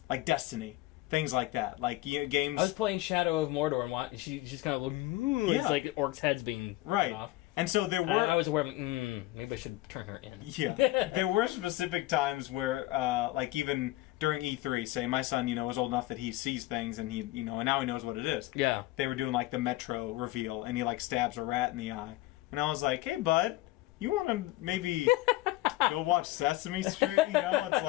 Destiny, things like that, games. I was playing Shadow of Mordor, and she's kind of looking. Yeah. It's orcs' heads being right off. And so there were. I was aware of maybe I should turn her in. Yeah, there were specific times where, even during E3, say my son, is old enough that he sees things and he, and now he knows what it is. Yeah. They were doing the Metro reveal, and he stabs a rat in the eye, and I was like, "Hey, bud, you want to maybe go watch Sesame Street?"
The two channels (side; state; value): right; quieter; 17.9 dB